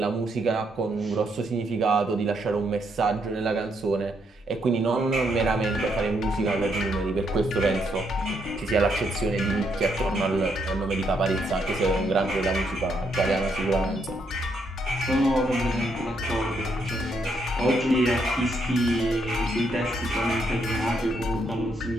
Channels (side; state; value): both; normal; correlation 0.75